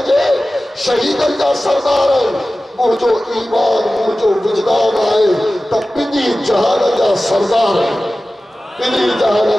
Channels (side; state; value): both; normal; correlation 0.96